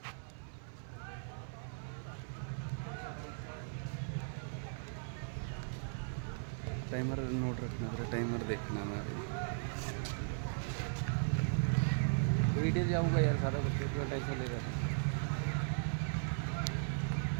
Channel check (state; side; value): silent; left; 53 dB below the other